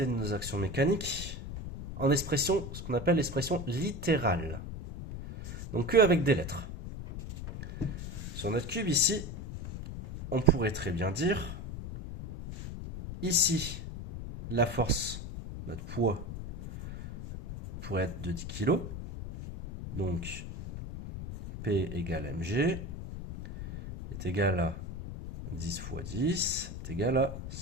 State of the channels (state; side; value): noise; left; rumble, 8 dB below the sound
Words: de nos actions mécaniques en expression, ce qu'on appelle l'expression littérale. Donc que avec des lettres. Sur notre cube ici, on pourrait très bien dire, ici, la force, notre poids, pourrait être de 10 kg. Donc, P égale mg est égal à 10 fois 10 est égal à